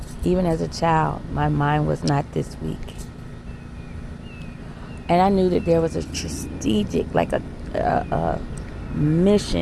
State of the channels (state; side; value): identical; both; correlation 1.00